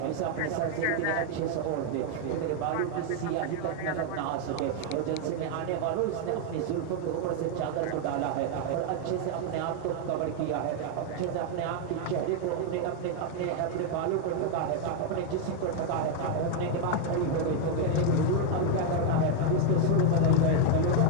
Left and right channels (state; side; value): different; both; correlation 0.01